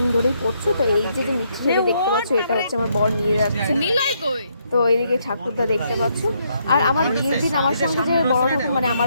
ধরেই পরছো। তো এই যে মিষ্টি যেটা দেখতে পাচ্ছ এটা হচ্ছে আমার বর নিয়ে যাচ্ছে। তো এইদিকে ঠাকুরদা দেখতে পাচ্ছ। আর আমার বিয়ের দিন আমার সঙ্গে যে বড় ঠাকুর মানে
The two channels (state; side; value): inverted; both; correlation -0.74